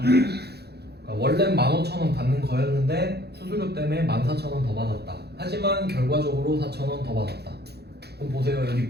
그러니까 원래 15,000원 받는 거였는데 수수료 때문에 14,000원 더 받았다. 하지만 결과적으로 4,000원 더 받았다. 그럼 보세요. 여기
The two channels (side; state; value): left; late; 0.48 ms